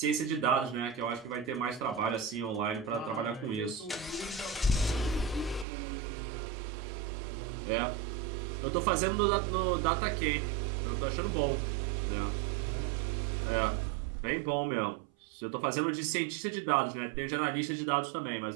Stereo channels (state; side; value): drops out; left; at 5.7 s